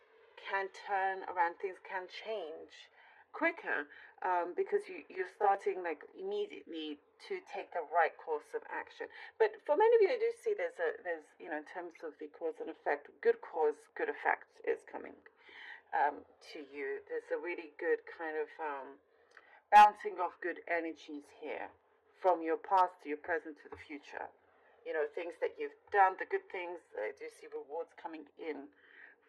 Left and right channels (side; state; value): both; identical; correlation 1.00